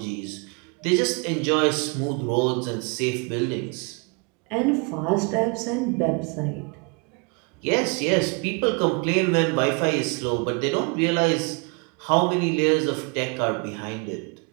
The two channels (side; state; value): left; quieter; 34.0 dB